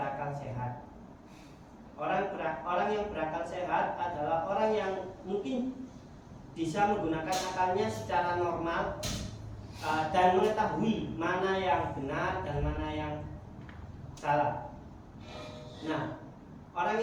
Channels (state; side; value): identical; both; correlation 1.00